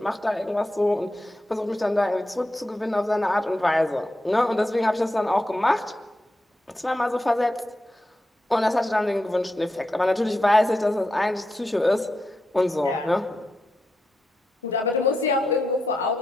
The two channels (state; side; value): normal; both; correlation 0.86